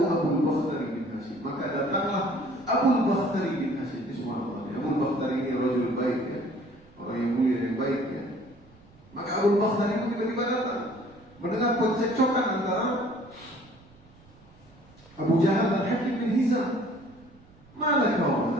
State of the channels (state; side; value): noise; right; rumble, 26 dB below the sound